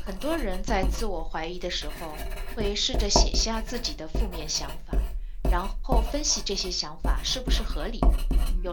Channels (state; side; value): identical; both; correlation 1.00